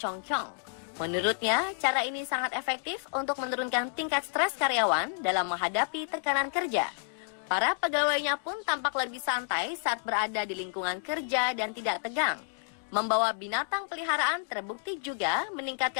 Menurutnya, cara ini sangat efektif untuk menurunkan tingkat stres karyawan dalam menghadapi tekanan kerja. Para pegawainya pun tampak lebih santai saat berada di lingkungan kerja dan tidak tegang. Membawa binatang peliharaan terbukti juga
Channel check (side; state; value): right; silent; digital silence